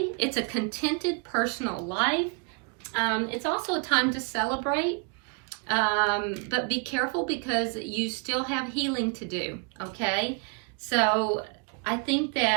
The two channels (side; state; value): left; quieter; 34.7 dB